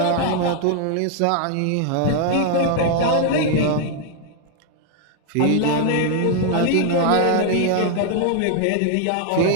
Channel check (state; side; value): different; both; correlation 0.00